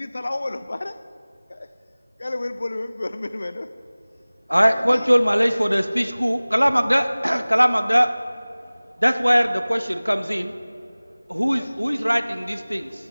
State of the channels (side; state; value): both; inverted; correlation -1.00